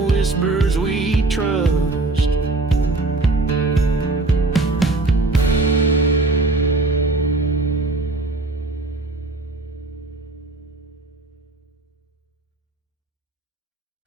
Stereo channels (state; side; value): quieter; left; 3.1 dB